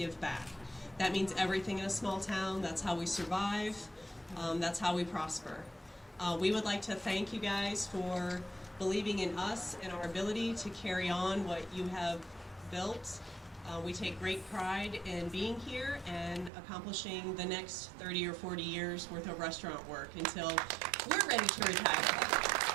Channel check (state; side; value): drops out; left; at 16.5 s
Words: back. That means everything in a small town. That's how we survive. That's how we prosper. We would like to thank you guys for believing in us and our ability to carry on what you have built. We take great pride in being here and accomplishing the next 30 or 40 years worth of restaurant work until we're ready to retire.